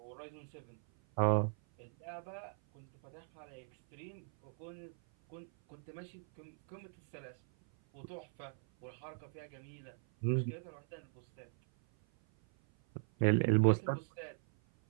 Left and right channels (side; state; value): left; silent; 52 dB below the other